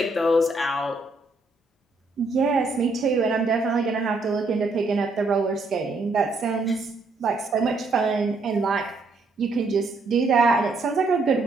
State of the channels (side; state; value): left; quieter; 3.3 dB